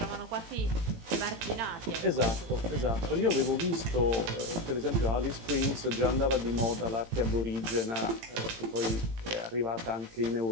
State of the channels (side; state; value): left; late; 18 ms